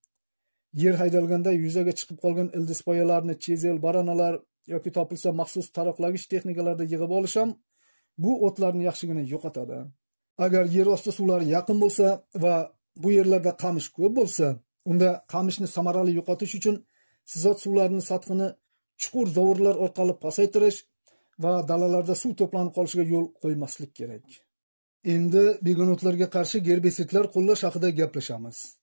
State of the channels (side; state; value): both; inverted; correlation -1.00